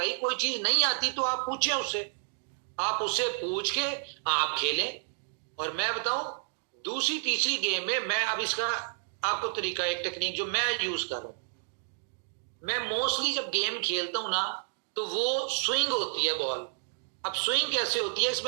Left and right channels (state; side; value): silent; left; digital silence